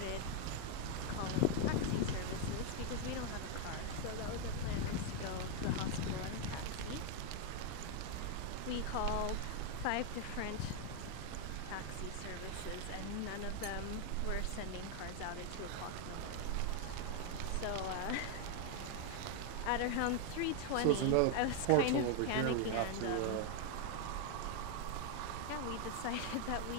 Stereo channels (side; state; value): both; different; correlation 0.00